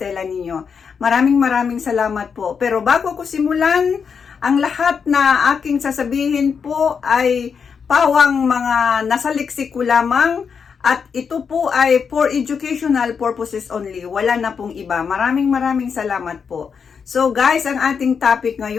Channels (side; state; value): right; quieter; 6.3 dB